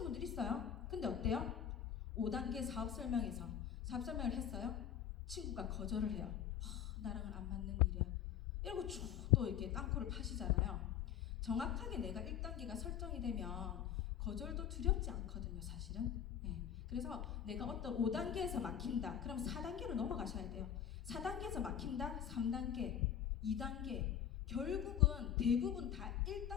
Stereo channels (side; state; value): right; quieter; 9.5 dB